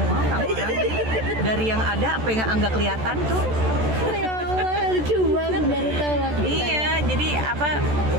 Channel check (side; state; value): left; late; 14 ms